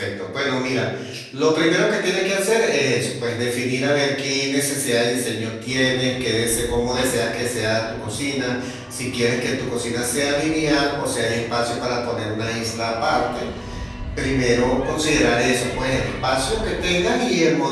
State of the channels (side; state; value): both; identical; correlation 1.00